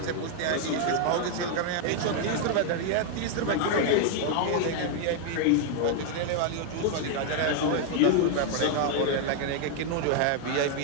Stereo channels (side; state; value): both; different; correlation 0.00